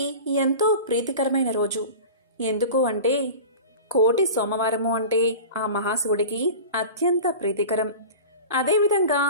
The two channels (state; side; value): inverted; both; correlation -0.34